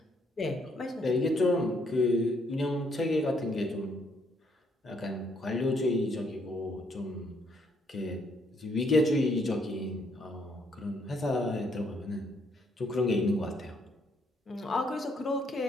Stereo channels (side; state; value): both; normal; correlation 0.70